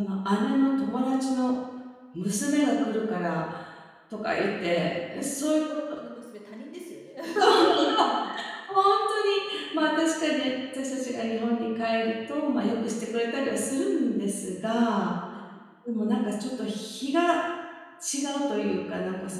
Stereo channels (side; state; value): both; identical; correlation 1.00